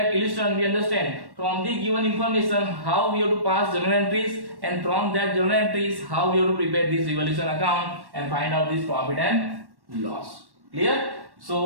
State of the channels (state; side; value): late; left; 1.1 ms